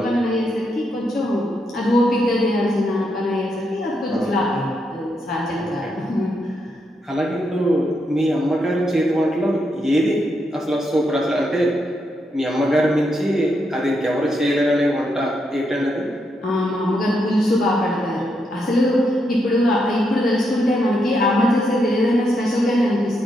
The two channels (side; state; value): both; normal; correlation 0.81